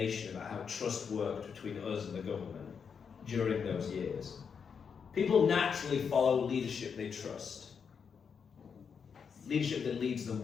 about how trust worked between us and the government during those years. People naturally follow leadership they trust. Leadership that leads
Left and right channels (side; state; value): right; quieter; 6.5 dB